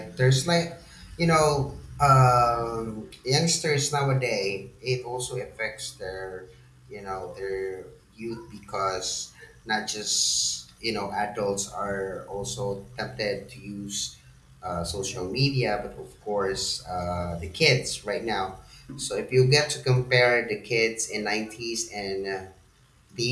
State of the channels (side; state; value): both; identical; correlation 1.00